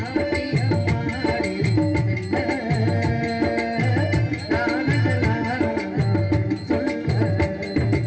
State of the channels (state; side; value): identical; both; correlation 1.00